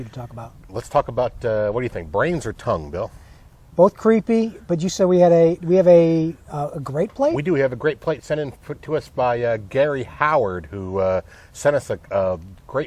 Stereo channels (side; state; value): both; identical; correlation 1.00